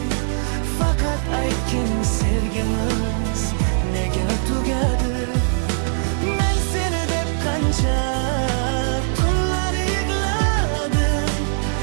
fakat aytgin sevgimiz nega tugadi? Men seni deb qancha tunlar yig'ladim,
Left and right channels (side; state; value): left; silent; digital silence